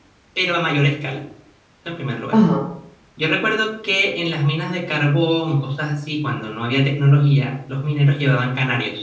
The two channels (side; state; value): both; identical; correlation 1.00